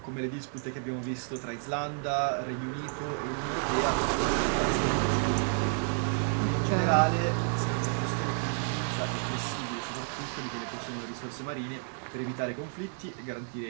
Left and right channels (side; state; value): left; silent; 57 dB below the other